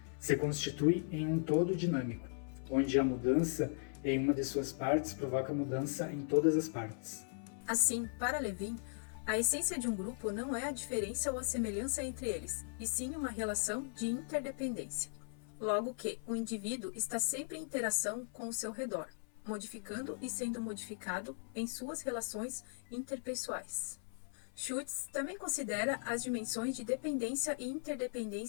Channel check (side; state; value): right; silent; 52 dB below the other